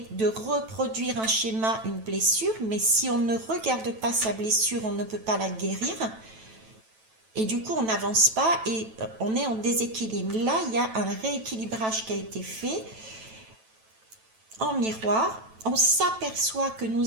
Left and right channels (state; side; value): late; left; 9.1 ms